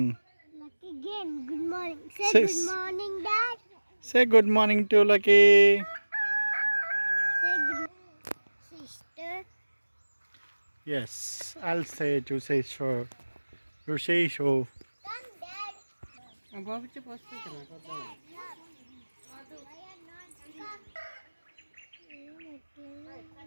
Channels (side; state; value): both; inverted; correlation -1.00